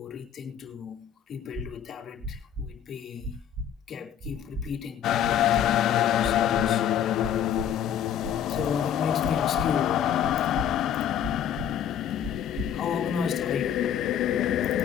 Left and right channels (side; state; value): right; quieter; 9.4 dB